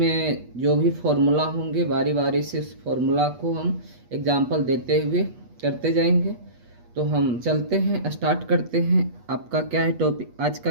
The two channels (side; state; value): left; late; 8.3 ms